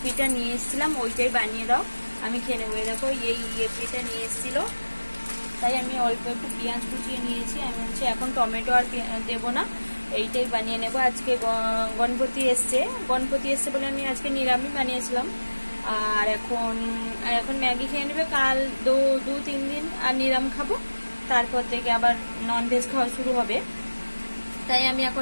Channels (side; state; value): both; inverted; correlation -1.00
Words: নিয়ে এসেছিলাম ওইটাই বানিয়ে দাও, আমি খেয়ে নেবো। দেখো এই ইয়েপিটা নিয়ে এসেছিলো, তাই আমি অল্প একটু পেঁয়াজ কুচিয়ে নিয়েছি। আমি বলছি এখন টমেটো আর দেবো না, এইটাই বানিয়ে নেব। আজকে গণপতি এসছে বলে আমি আজকে নিরামিষ বানিয়েছিলাম। আর এখন ম্যাগি খেয়ে নেবে, কাল 2-3 দিন আর নিরাম খাবো, তারপর থেকে আবার ননভেজ খাওয়া শুরু হবে। তাই আমি